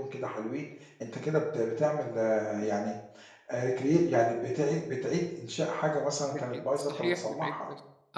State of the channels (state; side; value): identical; both; correlation 1.00